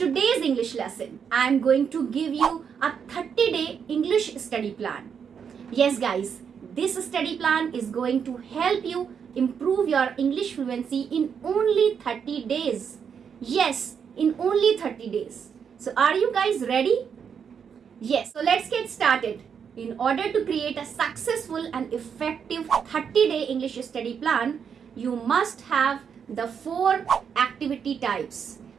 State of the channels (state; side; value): quieter; left; 7.1 dB